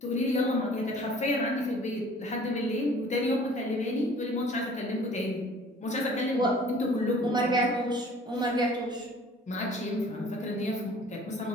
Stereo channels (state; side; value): normal; both; correlation 0.51